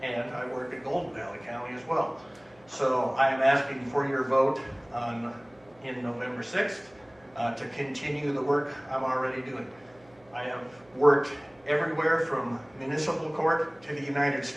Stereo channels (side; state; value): right; noise; hum, 29 dB below the sound